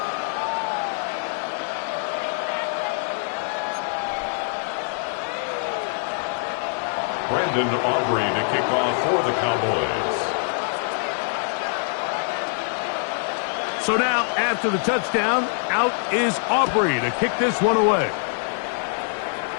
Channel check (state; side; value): silent; right; digital silence